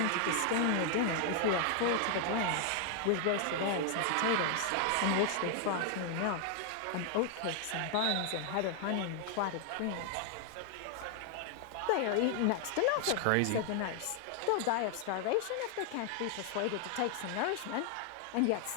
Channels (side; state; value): both; different; correlation 0.00